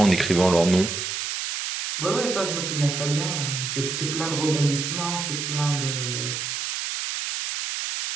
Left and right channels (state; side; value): noise; right; hiss, 3 dB below the sound